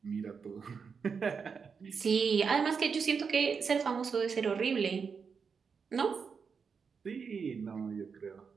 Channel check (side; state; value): left; quieter; 5.8 dB